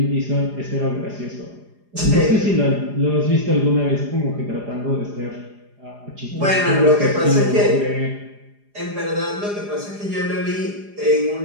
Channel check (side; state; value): left; late; 4.9 ms